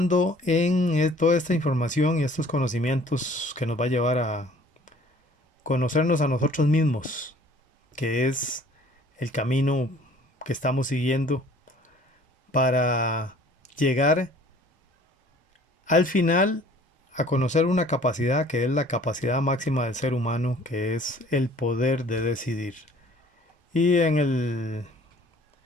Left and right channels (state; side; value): normal; both; correlation 0.53